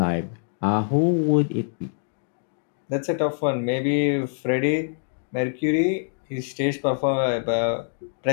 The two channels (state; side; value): silent; right; digital silence